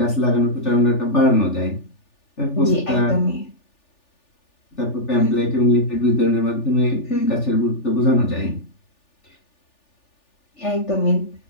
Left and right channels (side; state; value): right; late; 3.4 ms